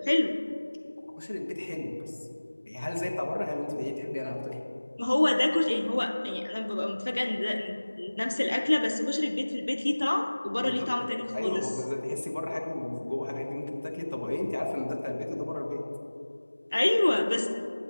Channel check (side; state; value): both; inverted; correlation -1.00